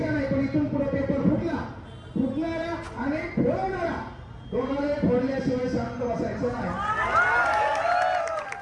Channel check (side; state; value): both; identical; correlation 1.00